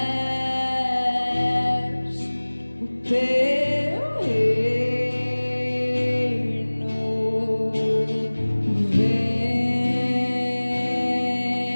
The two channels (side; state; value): both; inverted; correlation -1.00